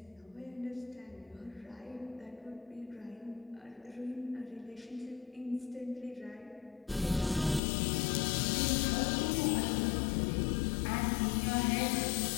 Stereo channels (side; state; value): right; drops out; at 7.6 s